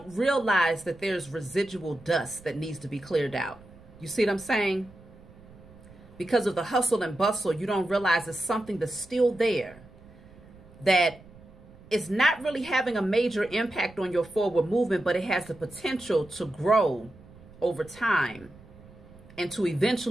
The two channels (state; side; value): noise; right; rumble, 22 dB below the sound